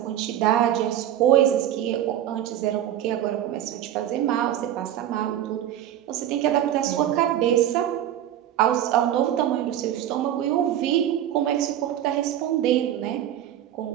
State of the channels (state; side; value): quieter; left; 11.6 dB